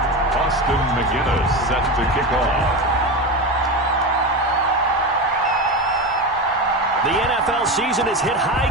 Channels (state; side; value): normal; both; correlation 0.21